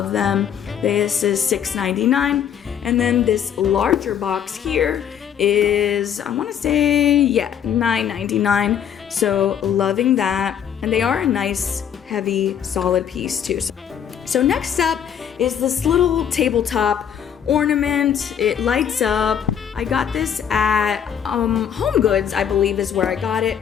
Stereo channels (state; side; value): quieter; right; 8.7 dB